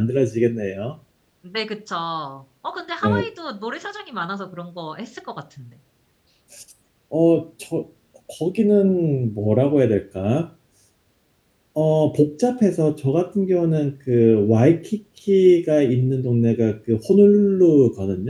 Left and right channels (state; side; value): identical; both; correlation 1.00